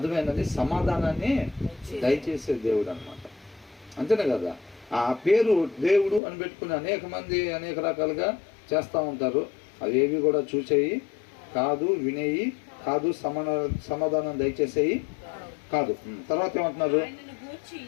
సమాధానాన్ని దయచేసే దేవుడు అన్నమాట. అంతేనే కదా? ఆ పేరు దేవుడు అని పెట్టుకుని అనేక మంది అనేక రకాలుగా చేస్తూ ఉంటారు. అవేవి కూడా చూసేయి కాదు, వినేయి కాదు, సమాధానం దయచేసేయి కాదు. తర్వాత ఏమంటున్నారు?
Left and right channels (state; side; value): drops out; right; at 6.2 s